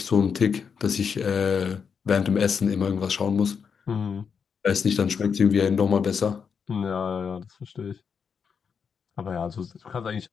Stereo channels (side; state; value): right; quieter; 6.4 dB